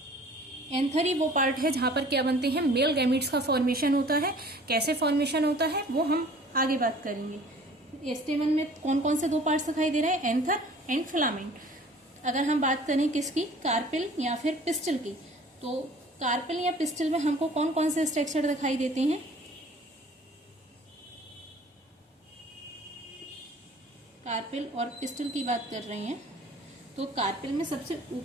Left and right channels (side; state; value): both; normal; correlation 0.49